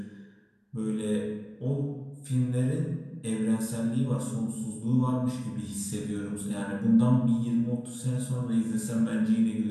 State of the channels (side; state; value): both; identical; correlation 1.00